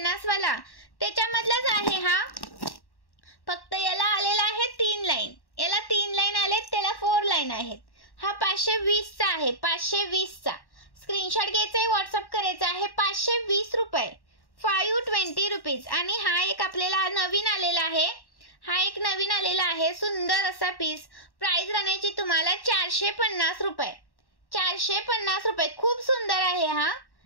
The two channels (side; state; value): right; late; 1.1 ms